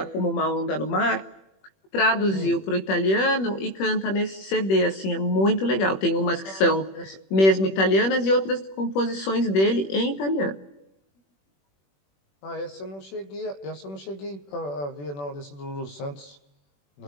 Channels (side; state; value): right; late; 21 ms